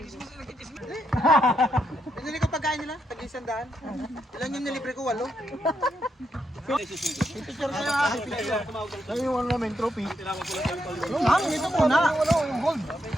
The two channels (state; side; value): normal; both; correlation 0.80